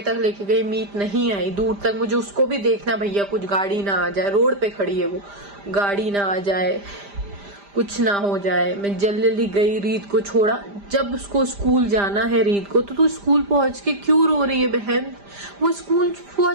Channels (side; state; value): left; late; 5.0 ms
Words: तक लेके गई, मीत नहीं आई दूर तक। मुझे उसको भी देखना भैया कुछ गाड़ी ना आ जाए, रोड पे खड़ी है वो, गाड़ी ना आ जाए, कुछ ना हो जाए। मैं जल्दी गई, रीत को छोड़ा। जब उसको स्कूल जाना है रीत को, तो तू स्कूल पहुंच के क्यों रो रही है बहन? वो स्कूल